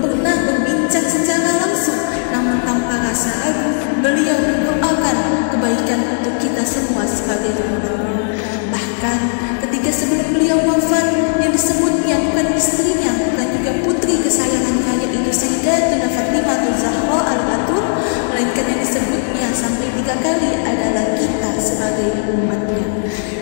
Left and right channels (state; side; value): silent; right; digital silence